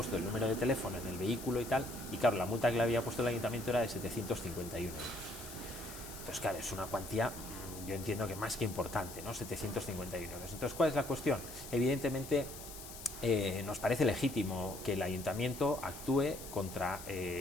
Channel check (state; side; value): noise; left; hiss, 13 dB below the sound